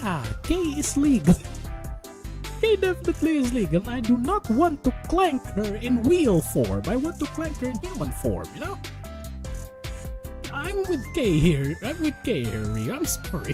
K is legal. K definitely is legal, and I do not want to clank her in wheel form. I want to clank her in human form, you know? I'm with K here, Ryu. I'm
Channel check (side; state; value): both; identical; correlation 1.00